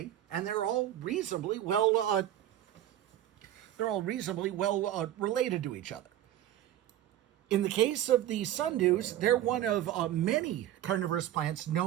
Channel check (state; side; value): quieter; left; 12.5 dB